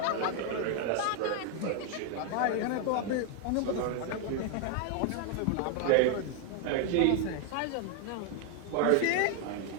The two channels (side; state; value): both; different; correlation 0.01